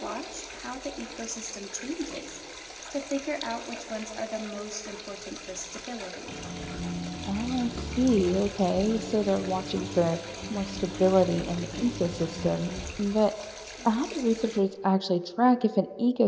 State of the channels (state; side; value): identical; both; correlation 1.00